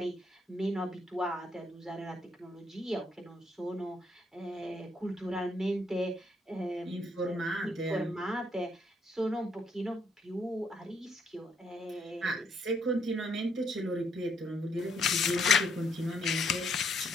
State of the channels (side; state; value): both; normal; correlation 0.72